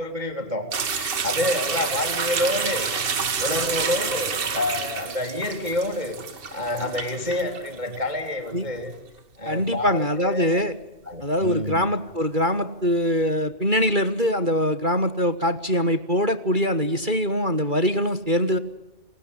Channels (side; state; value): left; late; 2.7 ms